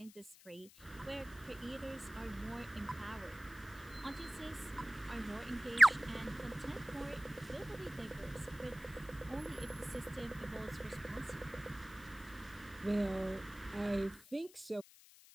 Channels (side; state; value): left; noise; hiss, 21 dB below the sound